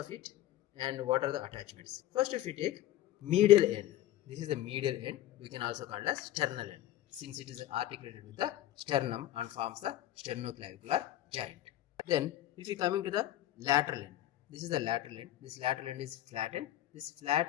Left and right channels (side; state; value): right; quieter; 13.6 dB